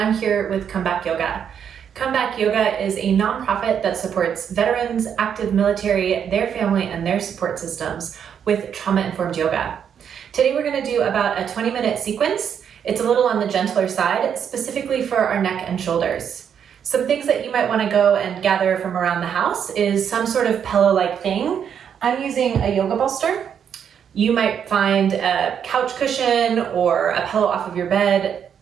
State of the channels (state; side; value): quieter; left; 8.1 dB